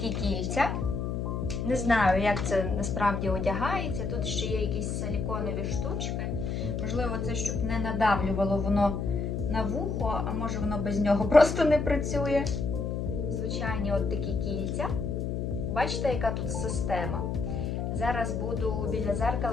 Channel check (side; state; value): left; noise; hum, 2 dB below the sound